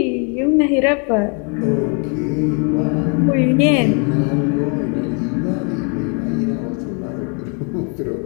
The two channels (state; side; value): quieter; right; 37.1 dB